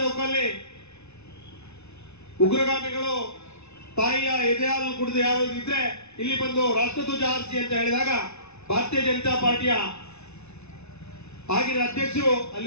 ಉಗ್ರಗಾಮಿಗಳು ತಾಯಿಯ ಎದೆ ಹಾಲು ಕುಡಿದು ಯಾರು ಇದ್ರೆ ಇಲ್ಲಿ ಬಂದು ರಾಷ್ಟ್ರಧ್ವಜ ಹಾರಿಸಿ ಅಂತ ಹೇಳಿದಾಗ ಭಾರತೀಯ ಜನತಾ ಪಾರ್ಟಿಯ ಆಗಿನ ಅಧ್ಯಕ್ಷರು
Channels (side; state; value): right; late; 0.81 ms